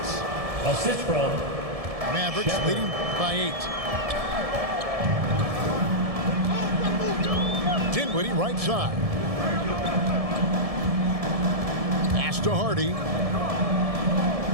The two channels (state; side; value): late; left; 1.7 ms